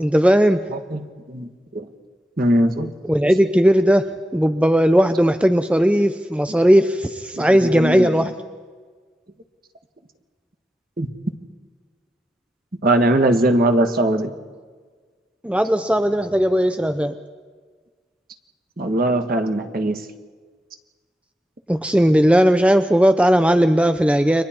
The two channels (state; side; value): normal; both; correlation 0.87